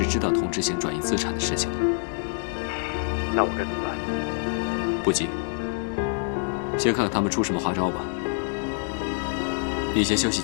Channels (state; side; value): silent; right; 59 dB below the other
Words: 知道童之行转移资产的事情的。那我该怎么办？不急，先看看他们出什么花招吧。你先休息